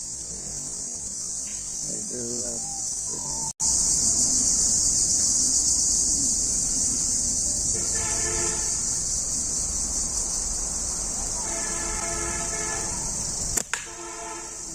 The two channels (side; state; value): both; identical; correlation 1.00